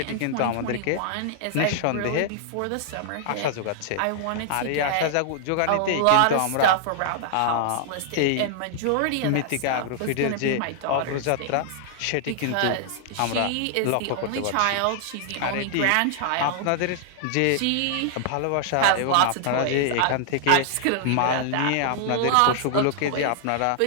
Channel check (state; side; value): different; both; correlation -0.01